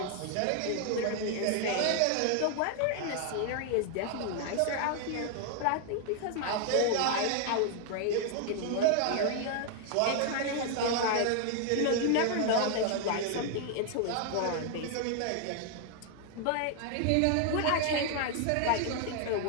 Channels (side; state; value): both; different; correlation 0.00